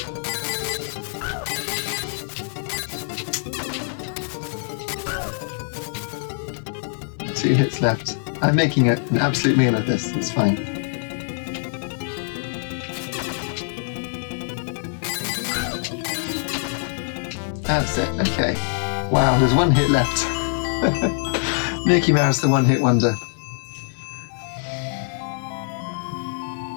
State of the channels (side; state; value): right; silent; 56 dB below the other